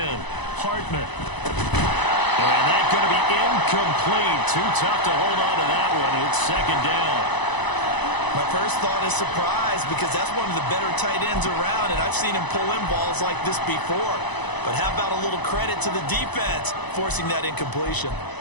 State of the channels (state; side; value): late; right; 1.0 ms